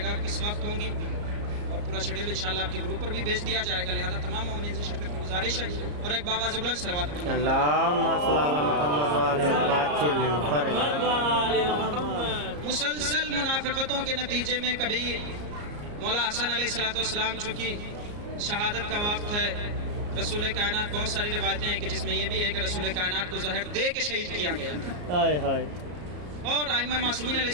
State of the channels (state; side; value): late; left; 34 ms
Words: گا کس وقت ہوں گی، اور پورا شیڈول انشاءاللہ آپ کے گروپ پر بھی بھیج دیا جائے گا، لہذا تمام مومنین سے شرکت کی گزارش ہے۔ اور ایک باواز بلند صلوات پڑھنا۔ اللہم صل علی محمد وآل محمد وعجل۔ مسلسل منافقتوں کے نتیجے میں کبھی مولا حسن علیہ الصلوۃ والسلام چونکہ شہادت کا وقت ہے، رسول کائنات بہت ساری روایتیں ہیں کہ جس میں یہ بھی ہے کہ رسول کائنات کو زہر دے کے شہید کیا گیا تھا، اور ائمہ معصومین علیہ